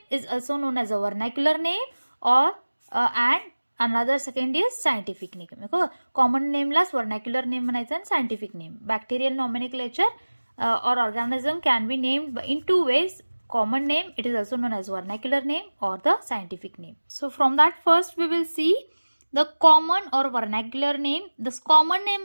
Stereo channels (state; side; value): inverted; both; correlation -1.00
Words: is also known as a vernacular name, or and another second is scientific name. Common name La vernacular name म्हणायचं and scientific name. Bacterial nomenclature or organism can be named in two ways. Common name, it is also known as vernacular name or the scientific name. So from that first we will see the common or vernacular name. This common